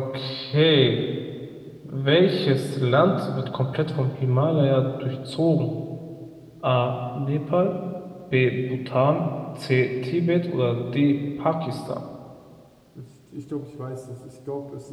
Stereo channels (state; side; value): identical; both; correlation 1.00